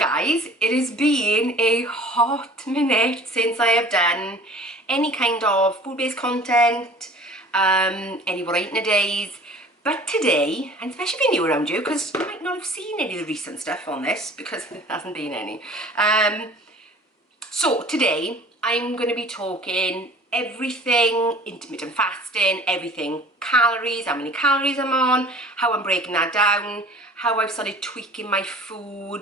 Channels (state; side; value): normal; both; correlation 0.47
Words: It has been a hot minute since I have done any kind of food-based content, any what I eat in a days. But today, and especially if you're new around you, because you might not have seen any of the recent stuff on this because there hasn't been any. So today I'm going to be talking everything intermittent fasting, everything calories, how many calories I'm on, how I'm breaking that down, how I've started tweaking my